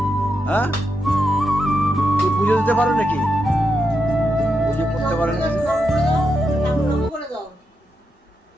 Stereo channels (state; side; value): normal; both; correlation 0.85